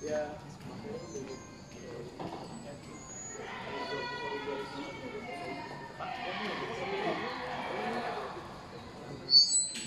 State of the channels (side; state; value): both; identical; correlation 1.00